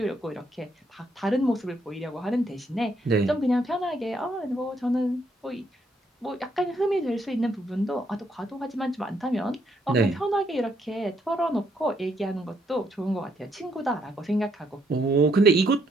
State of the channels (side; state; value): both; normal; correlation 0.73